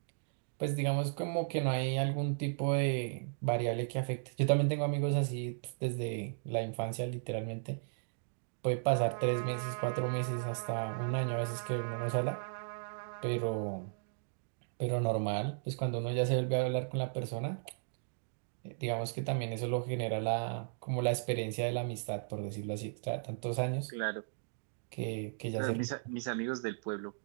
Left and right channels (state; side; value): silent; left; digital silence